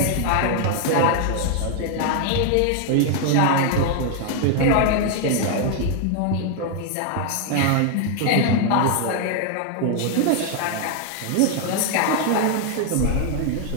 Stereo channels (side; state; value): both; different; correlation 0.00